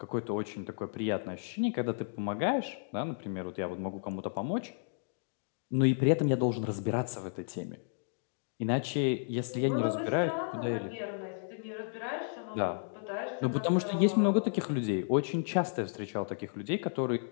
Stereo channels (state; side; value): silent; right; digital silence